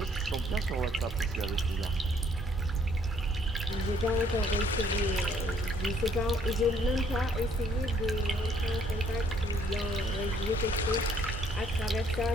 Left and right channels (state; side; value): normal; both; correlation 0.64